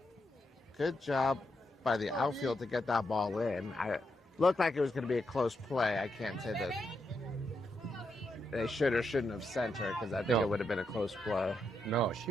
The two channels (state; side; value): normal; both; correlation 0.82